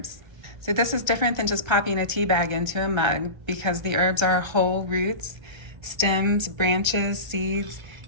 So this is different than just popping a tea bag into a mug because the herbs are whole roots, stems, branches, seeds,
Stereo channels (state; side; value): late; left; 1.3 ms